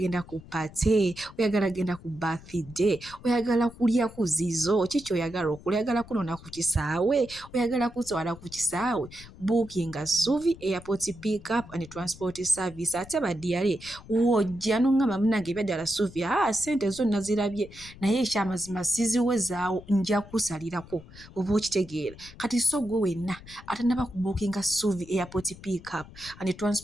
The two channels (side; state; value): left; noise; rumble, 19 dB below the sound